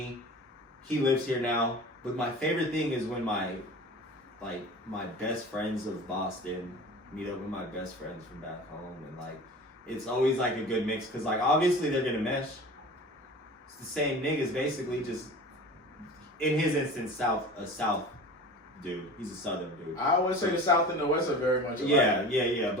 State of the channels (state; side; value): normal; both; correlation 0.37